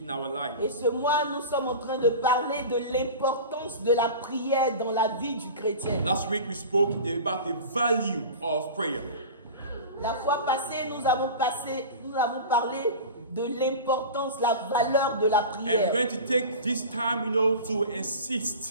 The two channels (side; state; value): both; inverted; correlation -0.33